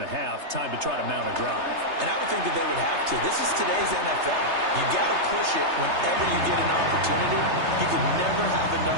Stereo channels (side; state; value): left; late; 3.3 ms